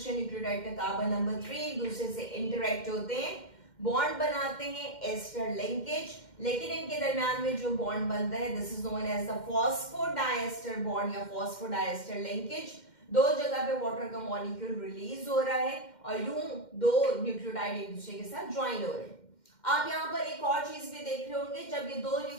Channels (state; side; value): late; right; 2.1 ms